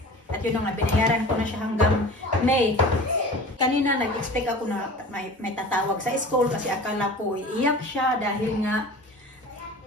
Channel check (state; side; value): normal; both; correlation 0.39